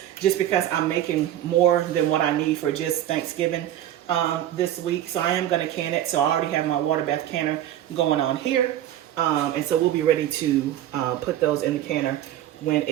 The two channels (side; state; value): left; quieter; 12.2 dB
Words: just because I'm making more than what I need for just Thanksgiving this week. So I am gonna can it. So I already have my water bath canner going on here. And so we'll be ready to put those in the canner when